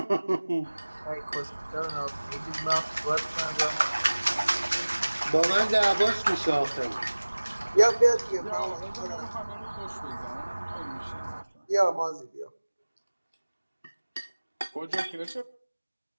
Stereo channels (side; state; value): both; inverted; correlation -1.00